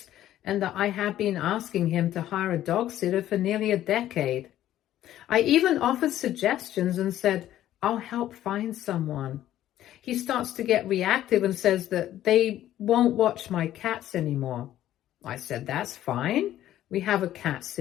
and that I had been asking him to hire a dog sitter for nearly a decade. I even offered suggestions and said, I'll help find someone. He starts to get reactive and says that they won't watch my cats anymore. I said, that's fine. We have a cat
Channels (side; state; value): right; quieter; 12.8 dB